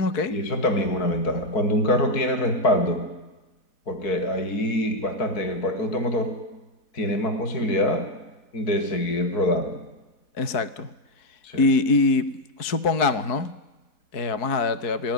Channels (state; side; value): late; right; 4.6 ms